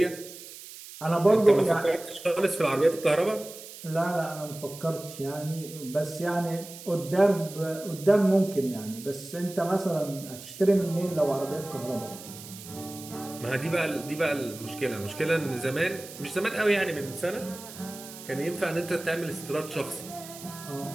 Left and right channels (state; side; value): noise; right; hiss, 15 dB below the sound